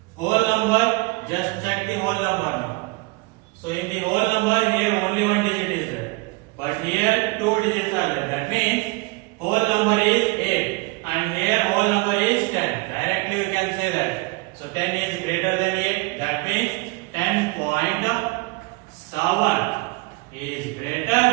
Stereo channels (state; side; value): quieter; left; 26.0 dB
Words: whole number, just check the whole number now. So in the whole number here only one digit is there, but here two digits are there. That means whole number is 8 and here whole number is 10. Directly we can say that. So 10 is greater than 8. That means 10.7 is greater